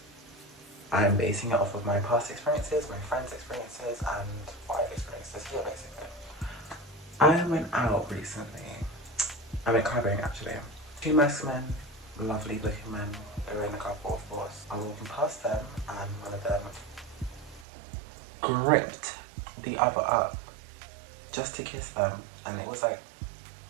I'm basing it off of my past experiences, my friends' experiences, and what I've experienced this year, basically. I went out recently. I went clubbing, actually. Two masc men, lovely looking men. They were in a couple, of course. I was walking past them, and one of them gripped the other up just to kiss them, and it was like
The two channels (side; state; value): left; drops out; at 17.7 s